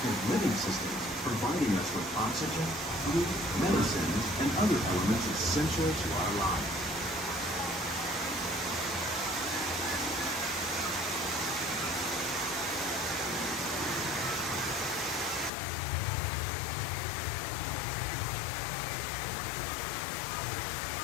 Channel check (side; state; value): right; drops out; at 15.5 s